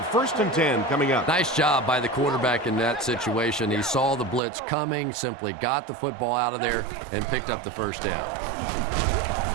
1st and 10 coming up. Nice job by the quarterback in that situation. He saw the blitz coming, simply got the football out of there, and picked up the first down.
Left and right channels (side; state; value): left; drops out; at 4.4 s